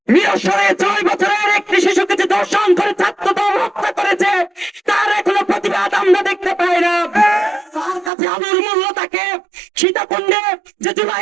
নিরসরে 6 বছরের একটি শিশুকে যে ধর্ষণ করে ছাত্রদল হত্যা করেছে তার এখনো প্রতিবাদ আমরা দেখতে পাই না। তার কাছে আলোর মূল্য থাকে সীতাকুণ্ডে যে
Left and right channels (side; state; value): left; drops out; at 8.1 s